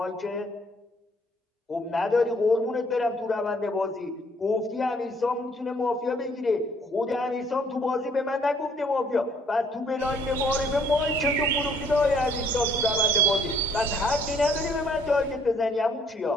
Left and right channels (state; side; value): normal; both; correlation 0.63